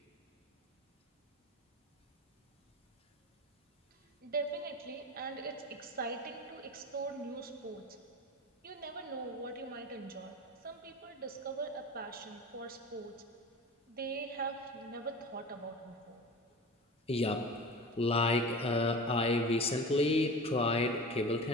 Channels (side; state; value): both; normal; correlation 0.33